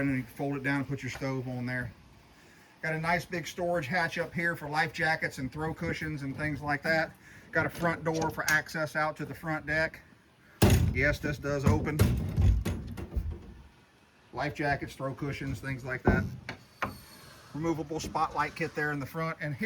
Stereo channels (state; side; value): identical; both; correlation 1.00